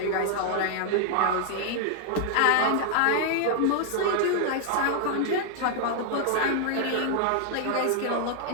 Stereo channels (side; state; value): both; different; correlation 0.00